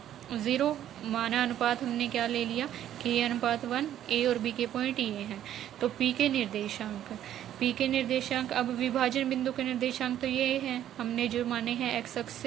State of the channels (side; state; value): left; quieter; 11.3 dB